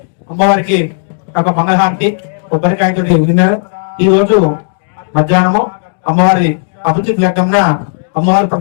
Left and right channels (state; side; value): silent; right; digital silence